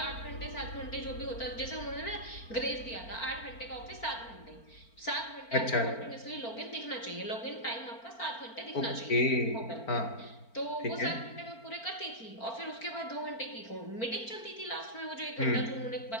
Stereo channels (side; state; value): right; late; 4.4 ms